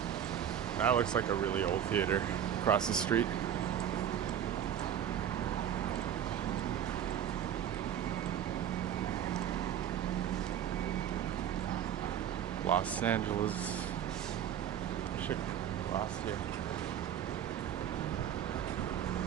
That looks like a really old theater across the street. Los Angeles. Should cross here.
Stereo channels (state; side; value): quieter; left; 9.6 dB